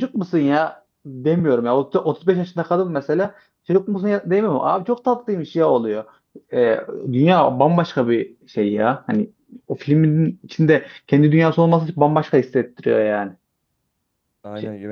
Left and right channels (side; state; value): both; identical; correlation 1.00